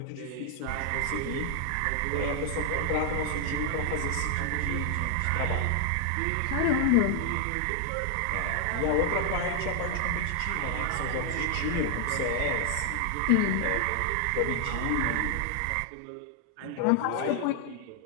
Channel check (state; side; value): different; both; correlation 0.00